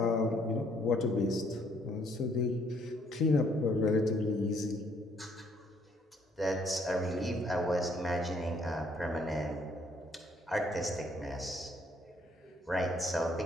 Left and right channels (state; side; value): normal; both; correlation 0.66